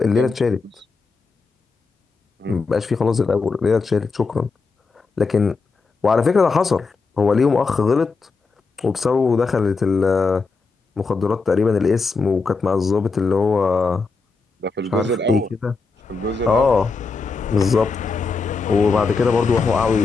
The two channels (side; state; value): right; quieter; 4.4 dB